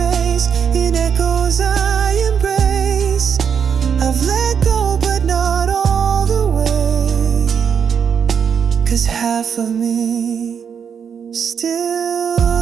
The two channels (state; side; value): quieter; left; 7.2 dB